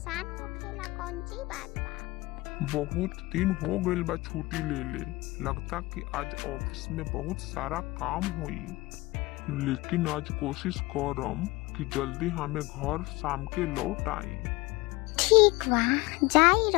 होखेला कौन सी बात बा। बहुत दिन हो गइल बा छुट्टी ले ले। लगता कि आज ऑफिस में बहुत सारा काम होई, लेकिन आज कोशिश करम कि जल्दी हमें घर शाम के लौट आई। ठीक बा, जाई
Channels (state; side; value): quieter; right; 21.8 dB